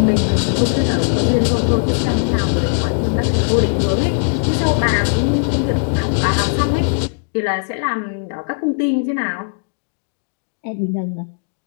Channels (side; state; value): right; silent; digital silence